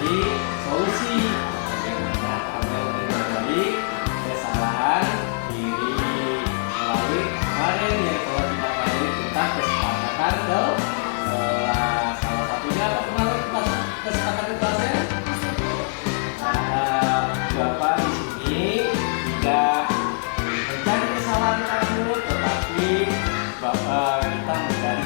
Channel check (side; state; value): right; silent; 63 dB below the other